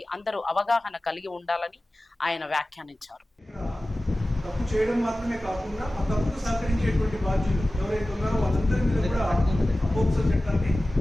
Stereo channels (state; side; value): normal; both; correlation 0.96